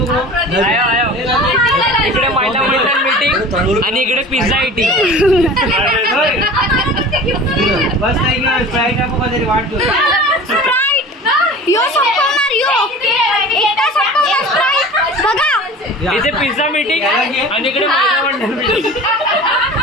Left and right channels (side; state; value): both; normal; correlation 0.39